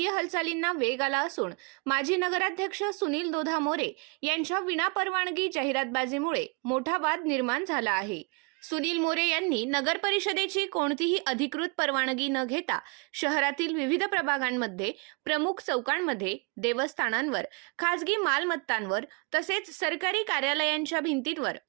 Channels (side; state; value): left; quieter; 32.2 dB